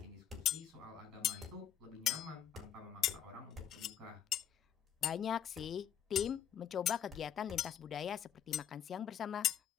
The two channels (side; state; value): right; quieter; 9.7 dB